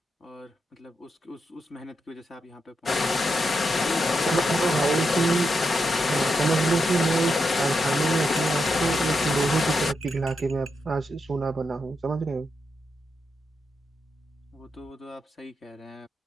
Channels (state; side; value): normal; both; correlation 0.84